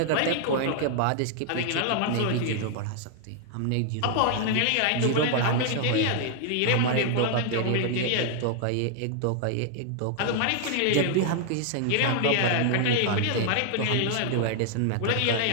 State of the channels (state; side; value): different; both; correlation 0.00